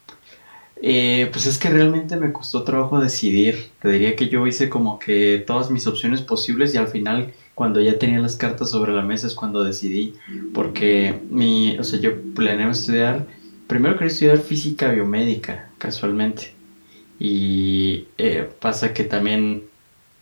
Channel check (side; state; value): both; inverted; correlation -1.00